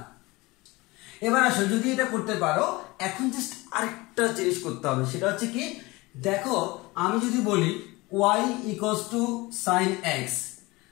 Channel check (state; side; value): quieter; right; 22.4 dB